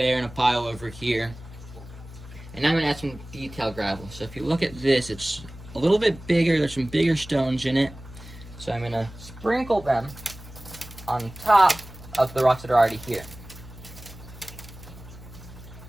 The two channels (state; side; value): noise; left; hum, 16 dB below the sound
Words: and a pile over here. And I'm going to add some detail gravel. So if you look at this, it's a little bit bigger. There's some bigger stones in it. So I'm going to sprinkle them on top of the rocks that are already here.